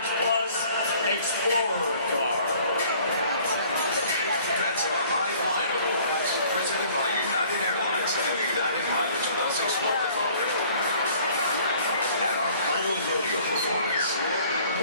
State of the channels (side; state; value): both; inverted; correlation -0.54